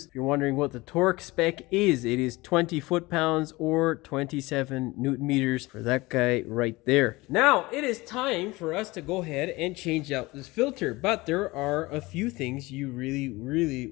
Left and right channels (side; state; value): right; quieter; 21.7 dB